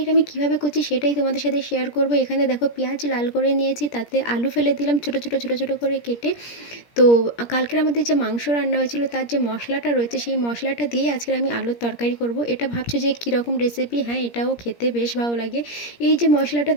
আমি কিভাবে করছি সেটাই তোমাদের সাথে শেয়ার করব। এখানে দেখো পেঁয়াজ লাল করে নিয়েছি, তাতে আলু ফেলে দিলাম ছোটো ছোটো ছোটো ছোটো করে কেটে। তো কালকের আমাদের যে মাংস রান্না হয়েছিল তার যে মশলাটা রয়েছে সেই মশলাটা দিয়ে আজকের আমি আলুর তরকারি করব। এটা ভাবছো যে কীরকম রেসিপি? হ্যাঁ, এটাও খেতে বেশ ভালো লাগে। এই যে মশলাটা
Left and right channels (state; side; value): late; right; 17 ms